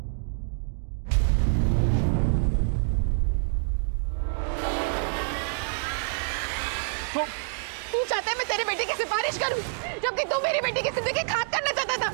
तू चाहता है मैं तेरी बेटी की सिफारिश करूं, जबकि तू मेरी बेटी की जिंदगी खाक करना चाहता था।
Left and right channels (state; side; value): silent; left; digital silence